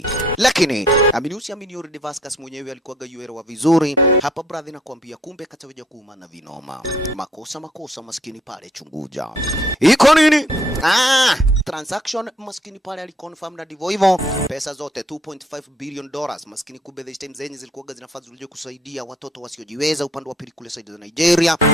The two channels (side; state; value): both; normal; correlation 0.63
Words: Lakini amini already Vasquez mwenyewe alikuwa gayuelewa vizuri. Hapa brother nakwambia kumbe kataweja kuumana vino. Makosa maskini pale chunguja. Iko nini? Transaction maskini pale aliconfirm na divo hivyo. Pesa zote $2.5 billion maskini kumbe this time zenye zilikuwa zinafaa zilije kusaidia watoto wasiojiweza upande wa pili kule side za Nigeria.